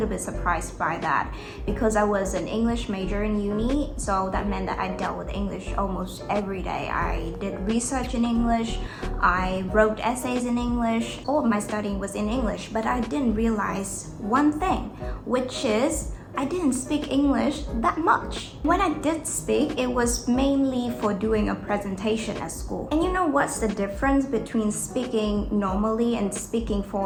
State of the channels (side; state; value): both; identical; correlation 1.00